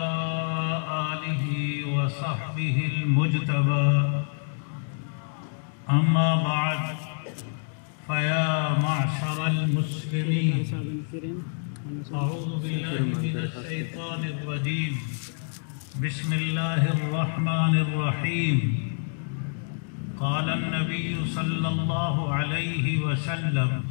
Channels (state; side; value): silent; right; digital silence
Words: آله وصحبه المجتبى أما بعد فيا معشر المسلمين أعوذ بالله من الشيطان الرجيم بسم الله الرحمن الرحيم قال النبي صلى الله عليه وسلم